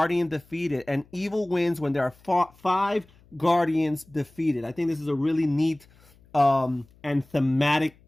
defeated, and evil wins when there are 5 Guardians defeated. I think this is a really neat and thematic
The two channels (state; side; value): noise; left; hum, 29 dB below the sound